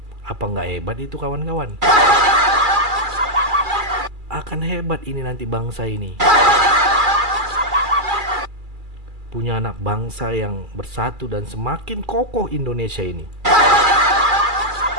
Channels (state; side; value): late; left; 2.4 ms